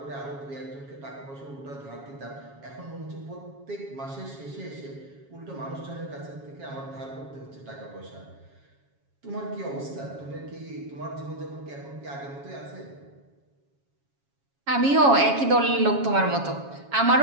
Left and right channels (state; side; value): late; left; 7.3 ms